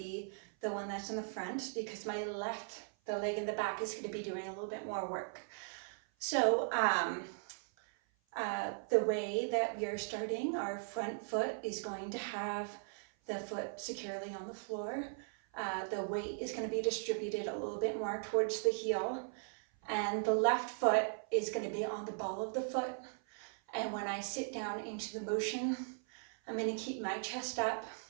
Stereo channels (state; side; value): silent; left; 52 dB below the other